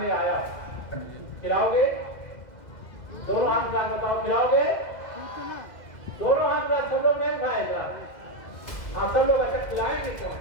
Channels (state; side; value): late; right; 2.0 ms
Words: आया है। खिलाओगे? दोनों हाथ में बताओ, खिलाओगे? दोनों हाथ में सब लोग नहीं उठाए जरा। हाँ, सब लोग अच्छा खिलाएंगे।